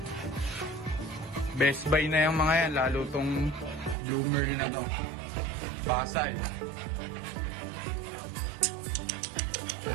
Best buy na yung mga yan, lalo tong Blue Merle na to. Basal.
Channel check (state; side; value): drops out; left; at 4.0 s